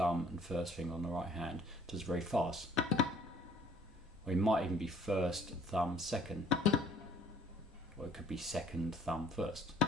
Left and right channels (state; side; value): normal; both; correlation 0.57